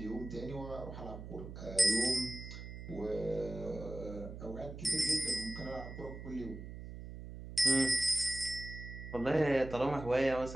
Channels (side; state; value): right; noise; hum, 11 dB below the sound